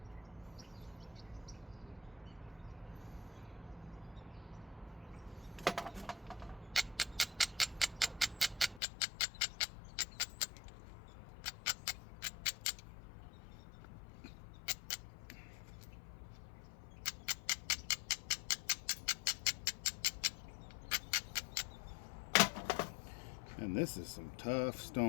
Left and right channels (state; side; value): drops out; right; at 8.8 s